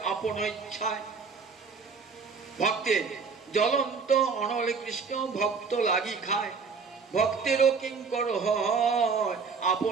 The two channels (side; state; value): left; quieter; 5.2 dB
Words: আপন ইচ্ছায়। ভক্তের জ্বলন্ত অনলে কৃষ্ণ ভক্ত লাগি খায়, ভক্তেরও কিঙ্কর হয়